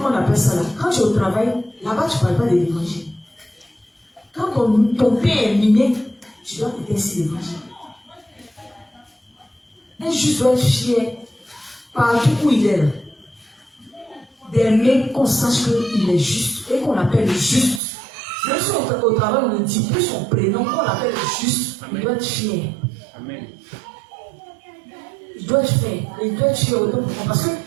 on appelle ça là? Quand tu es au travail, là-bas tu ne parles pas de l'évangile. Quand ton pain est miné, tu dois te ainsi l'évangile. Un juste doit être fier partout où il est là. D'aimer qu'on sache qu'il est juste et qu'on l'appelle juste. Même si au travail on ne dit plus son prénom, qu'on l'appelle juste, il doit être fier. Amen. Il doit être fier. Il doit être fier autant pour moi parce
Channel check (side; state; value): left; drops out; at 17.8 s